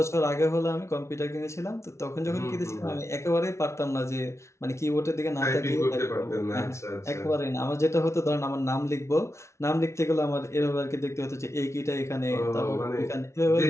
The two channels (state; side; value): late; right; 0.13 ms